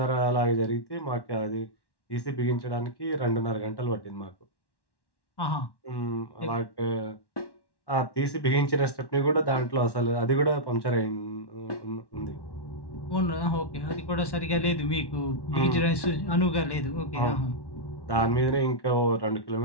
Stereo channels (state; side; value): late; right; 1.1 ms